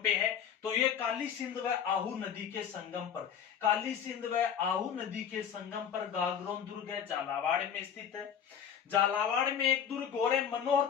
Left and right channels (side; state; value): right; quieter; 8.2 dB